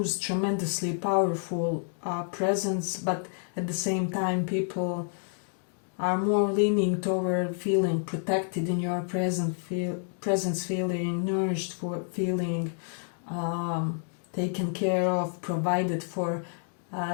tremendously powerful presence, but at the same time people are more leaning toward feeling protected in your presence, feeling nourished, for feeling taken care of, provided for.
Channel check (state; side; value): silent; right; digital silence